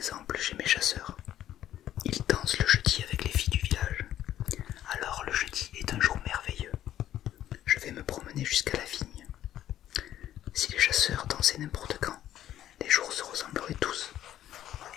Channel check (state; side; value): quieter; right; 12.0 dB